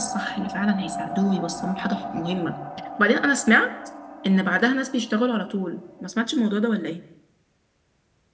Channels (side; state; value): both; identical; correlation 1.00